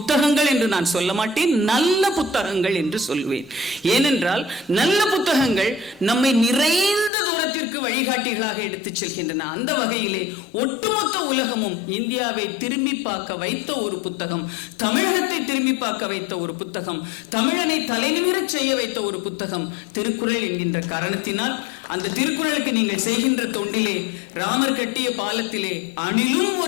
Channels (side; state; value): right; drops out; at 7.1 s